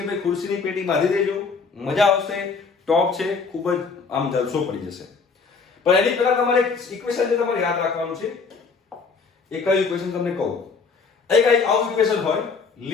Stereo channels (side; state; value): right; quieter; 4.9 dB